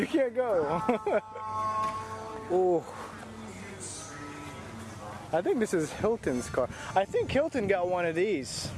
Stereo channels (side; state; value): both; identical; correlation 1.00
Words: can't go. Oh. I think this is Hilton's car. I think Hilton got one of these.